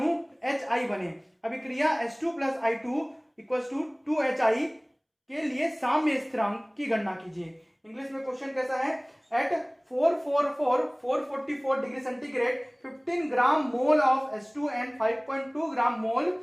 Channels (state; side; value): identical; both; correlation 1.00